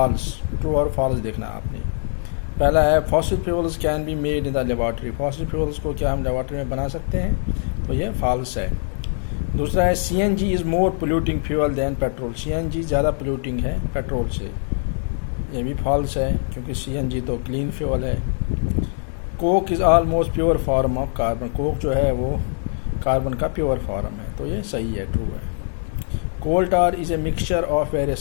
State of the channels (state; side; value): silent; right; digital silence